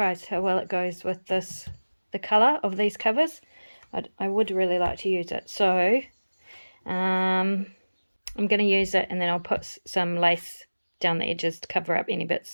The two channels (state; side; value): inverted; both; correlation -1.00